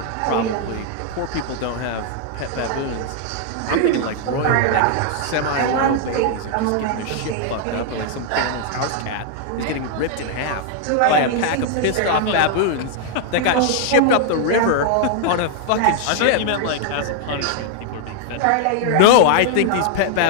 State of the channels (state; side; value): different; both; correlation 0.00